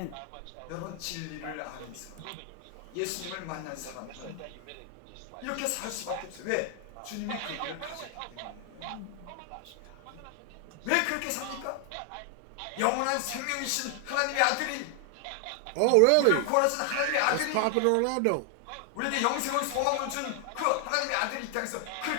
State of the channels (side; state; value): both; different; correlation 0.00